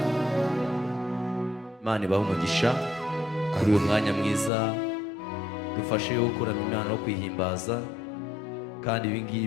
Imana ibahe umugisha kuri uyu mwanya mwiza dufashe gukorana Imana no kwihimbaza, kandi ibi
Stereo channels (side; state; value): right; drops out; at 4.5 s